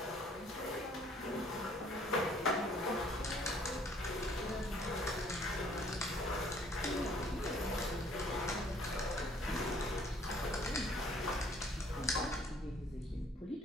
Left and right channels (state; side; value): normal; both; correlation 0.59